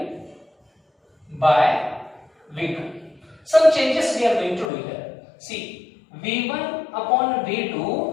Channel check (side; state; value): right; drops out; at 4.7 s